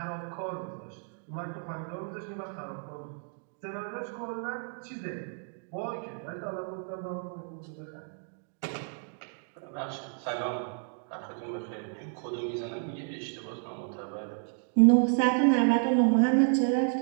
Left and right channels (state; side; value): silent; left; 55 dB below the other